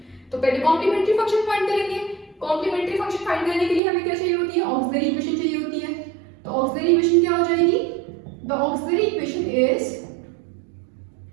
तो पहले कॉम्प्लीमेंट्री फंक्शन फाइंड करेंगे। कॉम्प्लीमेंट्री फंक्शन फाइंड करने के लिए हमें क्या चाहिए होती है? ऑक्सिलरी इक्वेशन चाहिए होती है। तो ऑक्सिलरी इक्वेशन क्या हो जाएगी? The auxiliary equation is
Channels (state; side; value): drops out; left; at 3.8 s